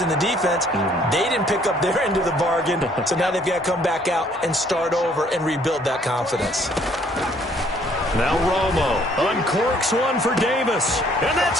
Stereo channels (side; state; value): both; normal; correlation 0.62